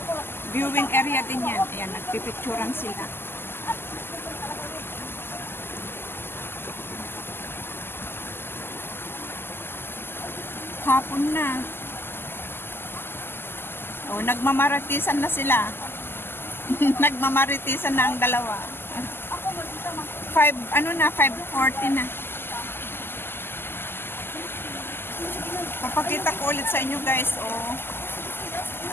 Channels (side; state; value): right; late; 0.11 ms